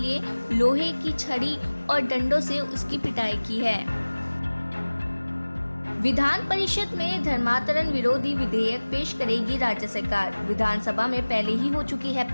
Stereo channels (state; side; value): inverted; both; correlation -1.00